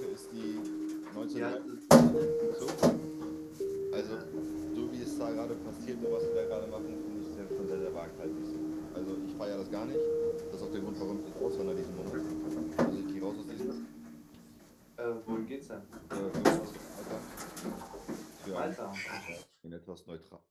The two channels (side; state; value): both; identical; correlation 1.00